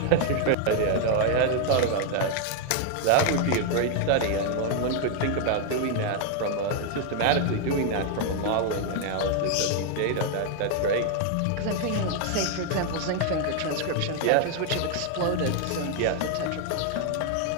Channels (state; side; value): different; both; correlation 0.00